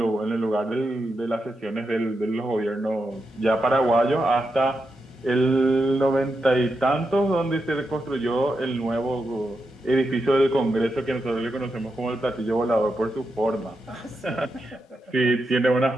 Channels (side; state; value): both; normal; correlation 0.86